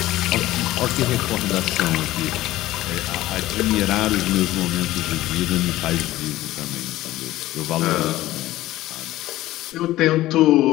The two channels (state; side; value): quieter; right; 15.9 dB